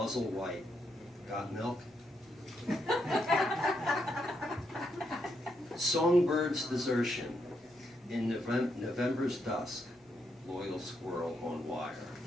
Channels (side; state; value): both; normal; correlation 0.79